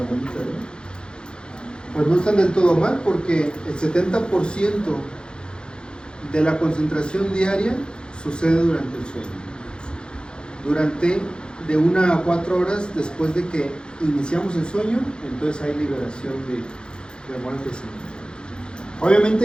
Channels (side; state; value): right; late; 0.049 ms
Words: ¿no? Pues no están del todo mal, porque el 70% de la concentración diaria sucede durante el sueño. Durante de 1 a 4 horas después de que iniciamos el sueño, entonces hay liberación de hormonas de crecimiento.